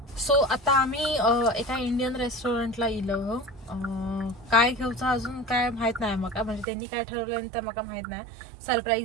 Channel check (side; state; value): left; drops out; at 6.7 s